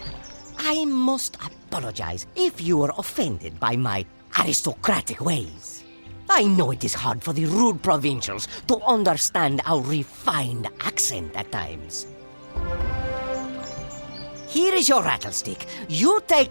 I must apologize if you were offended by my aristocratic ways. I know it is hard for the rude provincials to understand our refined accent at times. Here is your rattlestick. You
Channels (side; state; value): both; inverted; correlation -1.00